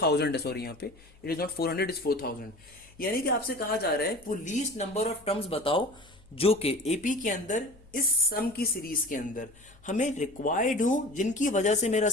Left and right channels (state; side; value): noise; left; hum, 27 dB below the sound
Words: है। सॉरी यहाँ पे इट इज नॉट 400, इज 4000। यानी कि आपसे कहा जा रहा है वो लीस्ट नंबर ऑफ टर्म्स बताओ जो कि एपी के अंदर इस सम की सीरीज के अंदर हमें रिक्वायर्ड हो जिनकी वजह से मेरा